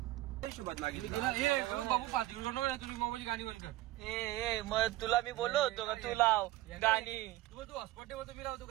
बाबू 5 मिनिट तुम्ही मोबाईल गाणी बंद कर. ए मग तुला मी बोललो होतो का तू लाव गाणी. तू हॉस्पॉट ठेवतो, मी लावतो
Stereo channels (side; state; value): left; quieter; 17.0 dB